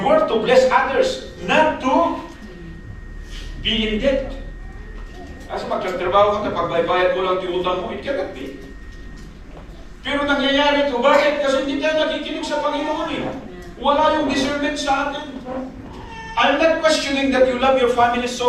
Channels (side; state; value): both; identical; correlation 1.00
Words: to bless others, not to be in debt. Kasi magtatrabaho ka, pagbaybayad mo lang tiutang mo, it cannot be. Pero nangyayari ito, bakit? Kasi hindi tayo nakikinig sa Panginoon eh. Wala yung discernment sa atin. I'm not questioning that you love your family